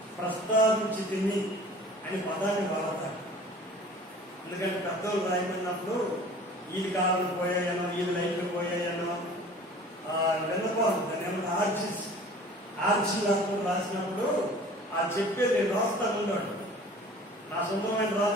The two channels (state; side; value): normal; both; correlation 0.45